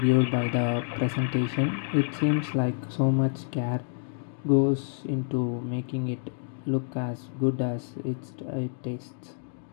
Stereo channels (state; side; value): silent; right; digital silence